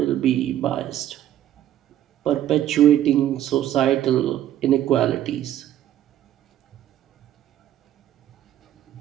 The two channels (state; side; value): quieter; left; 12.0 dB